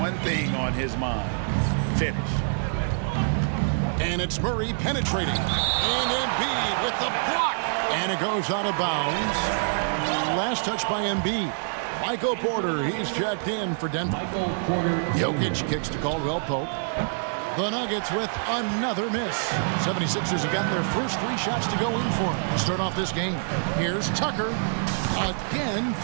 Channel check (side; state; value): left; silent; 59 dB below the other